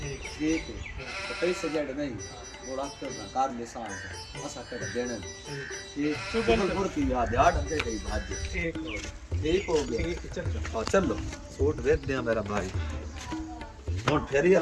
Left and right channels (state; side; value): identical; both; correlation 1.00